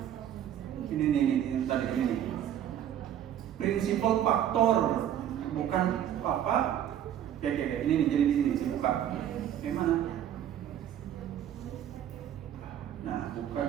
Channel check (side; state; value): left; quieter; 10.5 dB